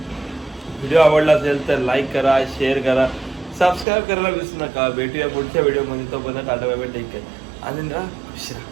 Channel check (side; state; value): left; drops out; at 3.9 s